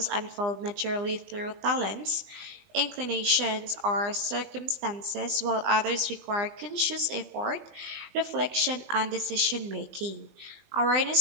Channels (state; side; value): late; left; 20 ms